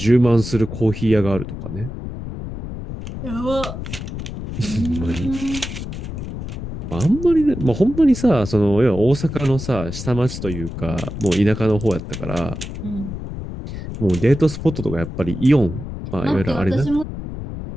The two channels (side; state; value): left; noise; rumble, 8 dB below the sound